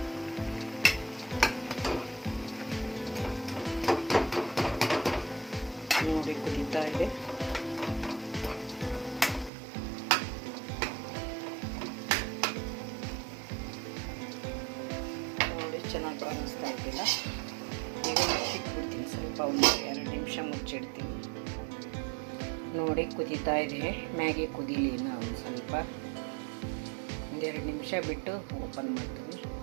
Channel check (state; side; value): drops out; left; at 9.5 s